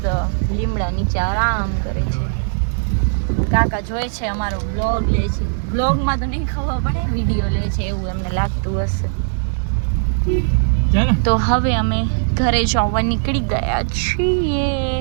લીમડા નીચે આરામ કરે છે. કાકા જોઈ છે અમારો બ્લોગ લે છે. બ્લોગમાં તો નહીં ખબર પડે, વિડીયો લે છે એવું એમને લાગતું હશે. તો હવે અમે ઘરે જવા નીકળી ગયા છીએ.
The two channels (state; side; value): silent; left; digital silence